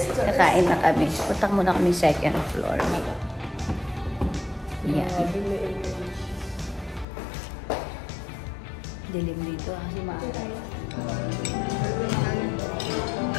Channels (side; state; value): right; drops out; at 7.1 s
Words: Kakain na kami. Punta muna kami second floor. Yan. Dilim dito kasi maaral.